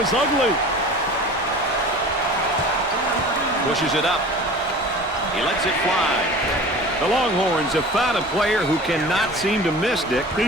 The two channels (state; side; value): normal; both; correlation 0.40